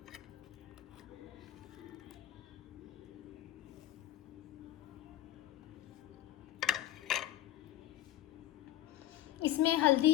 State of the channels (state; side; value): quieter; right; 13.8 dB